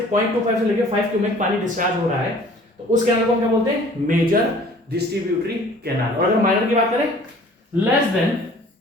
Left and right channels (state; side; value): normal; both; correlation 0.51